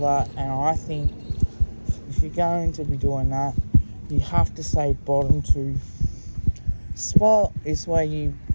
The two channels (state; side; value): inverted; both; correlation -1.00